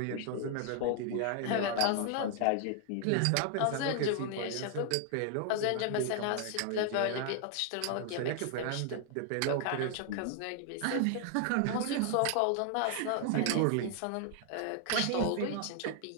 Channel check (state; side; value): different; both; correlation 0.00